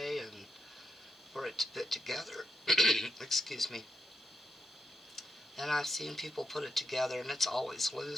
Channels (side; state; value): both; normal; correlation 0.84